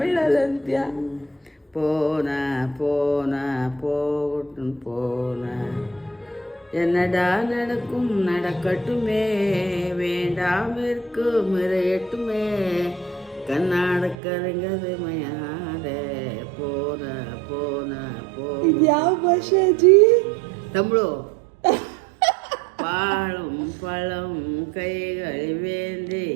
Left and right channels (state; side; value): drops out; left; at 14.2 s